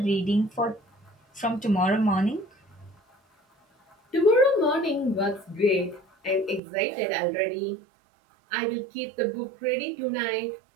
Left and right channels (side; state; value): left; drops out; at 6.6 s